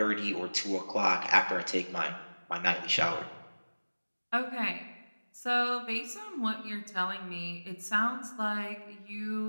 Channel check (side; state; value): both; inverted; correlation -1.00